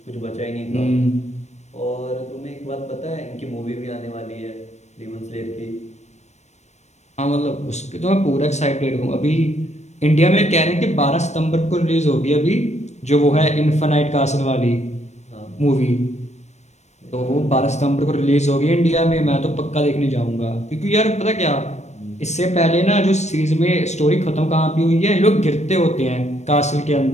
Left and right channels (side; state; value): right; late; 0.33 ms